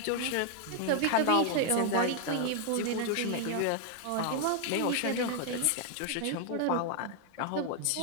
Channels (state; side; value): different; both; correlation 0.00